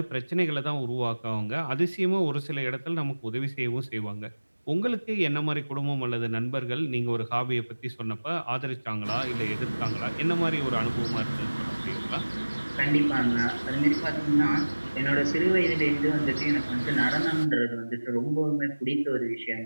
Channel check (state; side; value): inverted; both; correlation -1.00